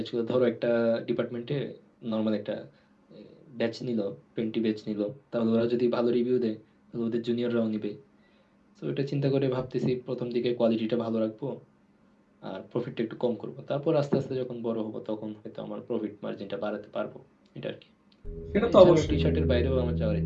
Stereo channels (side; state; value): both; identical; correlation 1.00